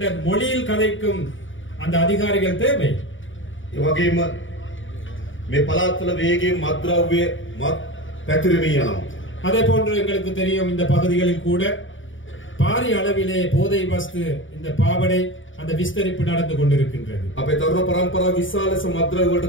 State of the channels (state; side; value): late; right; 0.57 ms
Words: மொழியில் கதைக்கும் அந்த அதிகாரிகள் தேவை. ඒ වගේම මේ පළාත්වල වේගයෙන් මත්ද්‍රව්‍ය පැතිරෙමින් යනවා. அதே போன்று எங்களுக்கு தெரியும், இந்த பகுதிகளில் கூட பாரிய அளவிலே போதை வஸ்து, இந்த பாவடை, அந்த விஸ்தரிப்பு நடந்து கொண்டிருக்கின்றது. අපේ තරුණ පරම්පරාව විශාල මත්ද්‍රව්‍ය වලට